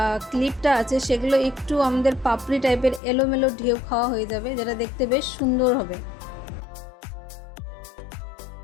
ক্লিপটা আছে সেগুলো একটু আমাদের পাপড়ি টাইপের এলোমেলো ঢেউ খাওয়া হয়ে যাবে, যেটা দেখতে বেশ সুন্দর হবে।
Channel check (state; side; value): drops out; right; at 3.0 s